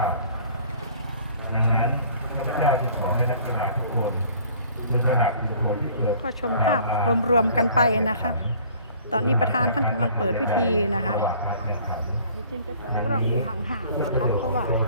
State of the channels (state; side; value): inverted; both; correlation -0.53